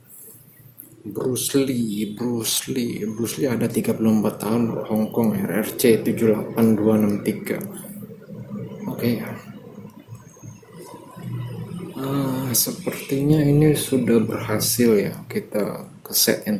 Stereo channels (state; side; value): identical; both; correlation 1.00